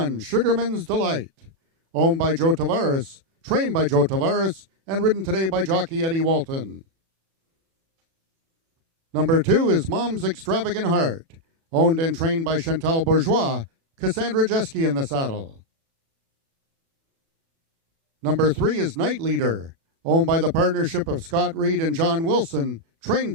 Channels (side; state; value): left; late; 36 ms